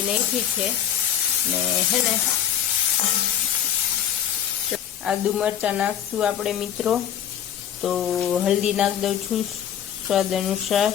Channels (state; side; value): quieter; right; 9.7 dB